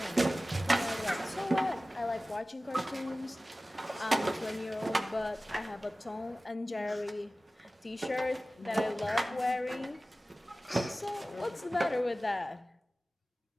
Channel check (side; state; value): both; normal; correlation 0.96